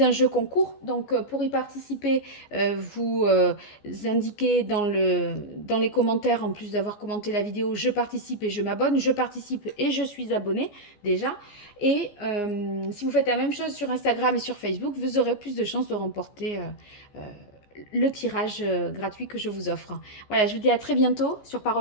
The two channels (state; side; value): late; right; 14 ms